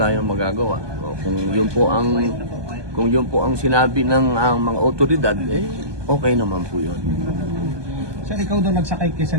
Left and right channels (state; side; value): late; left; 1.2 ms